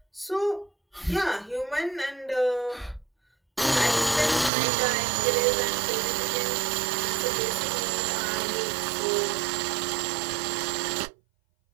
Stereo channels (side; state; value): left; drops out; at 4.5 s